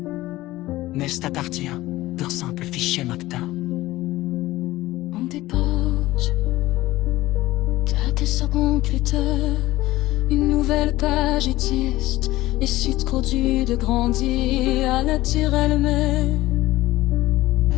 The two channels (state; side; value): quieter; right; 17.4 dB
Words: n'est à partir d'un simple fichier MACTA. On dépose quelques secondes plus tard, une nouvelle page existe, et si trop dur de grandir à naturellement.